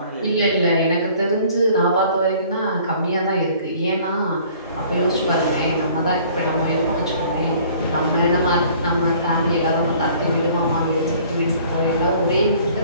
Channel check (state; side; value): inverted; both; correlation -0.53